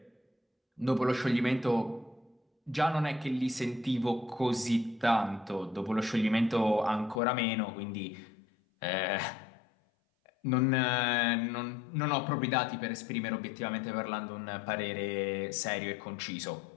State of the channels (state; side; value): drops out; right; at 7.2 s